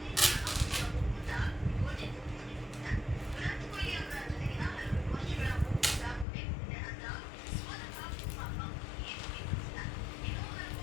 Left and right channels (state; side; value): drops out; right; at 6.2 s